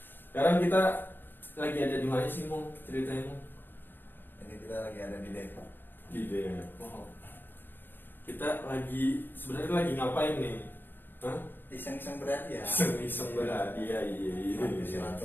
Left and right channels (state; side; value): late; right; 0.095 ms